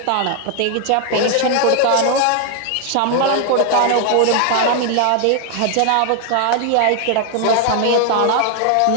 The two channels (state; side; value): different; both; correlation 0.00